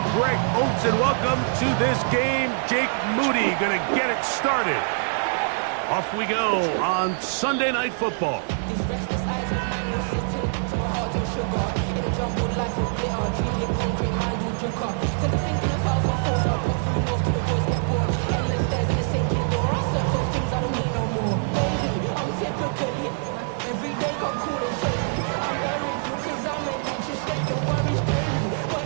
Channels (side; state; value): left; silent; 62 dB below the other